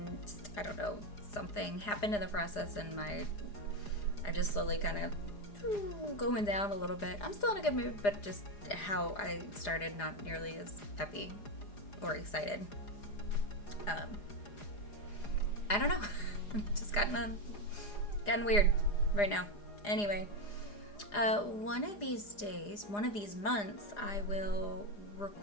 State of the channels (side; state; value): right; late; 4.9 ms